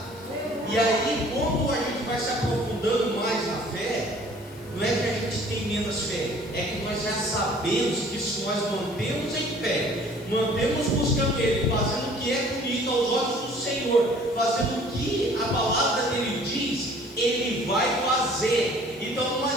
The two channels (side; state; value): left; noise; hiss, 24 dB below the sound